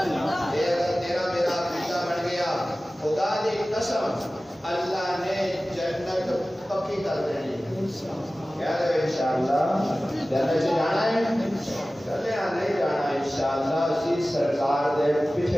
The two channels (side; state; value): both; normal; correlation 0.97